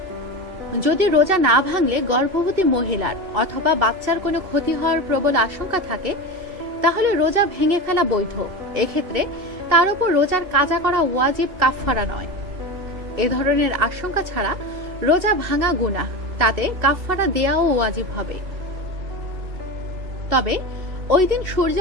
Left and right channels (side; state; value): left; late; 2.7 ms